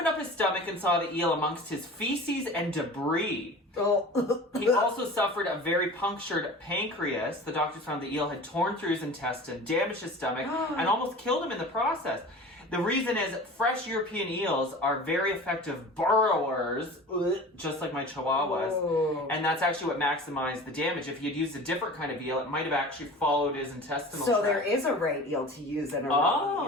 up his stomach and saw the eel amongst his feces and debris. Oh. He also suffered a very punctured pancreas. The doctors found the eel had torn through his intestine, damaged his stomach, and almost killed him in the process. The reason is fresh European eels are very effective burrowers, just like my chihuahuas. Oh. And that's actually what maximized the damage. If you'd used a different kind of eel, it might have actually followed his intestinal So tract. there is a right eel to use and a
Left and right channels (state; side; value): normal; both; correlation 0.38